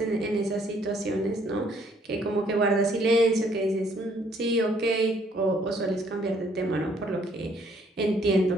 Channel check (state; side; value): normal; both; correlation 0.64